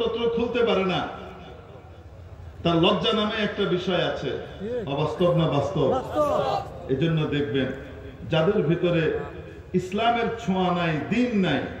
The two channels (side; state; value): both; identical; correlation 1.00